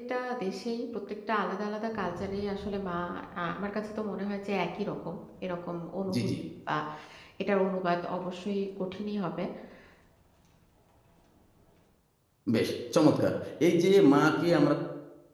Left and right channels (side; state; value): both; identical; correlation 1.00